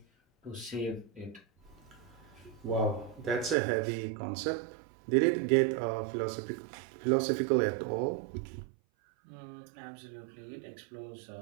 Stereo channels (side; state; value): left; drops out; at 3.6 s